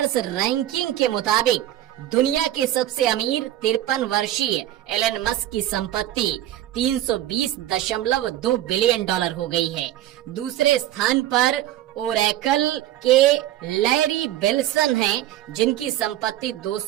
ranking के मुताबिक दुनिया के सबसे अमीर 53 वर्षीय एलन मस्क की संपत्ति $320.2 बिलियन हो गई है। दूसरे स्थान पर ओरेकल के लैरी बिल्सन हैं, जिनकी संपत्ति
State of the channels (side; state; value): left; quieter; 13.4 dB